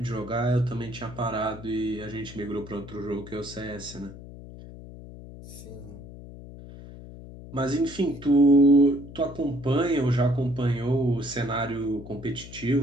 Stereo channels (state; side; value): noise; left; hum, 15 dB below the sound